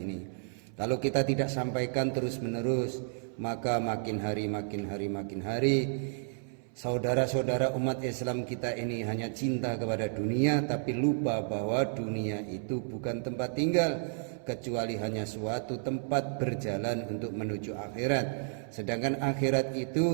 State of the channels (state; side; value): silent; left; 57 dB below the other